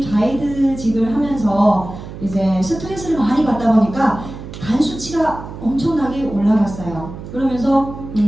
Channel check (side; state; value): right; noise; hum, 12 dB below the sound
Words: 가이드직을 하면서 이제 스트레스를 많이 받다 보니까 간 수치가 엄청나게 올라갔어요. 그러면서